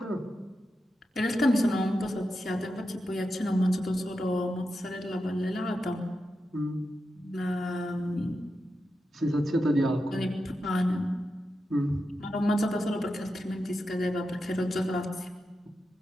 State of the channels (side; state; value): both; normal; correlation 0.89